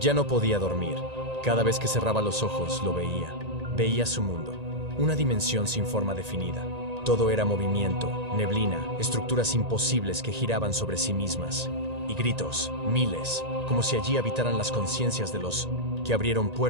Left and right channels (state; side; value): late; left; 1.8 ms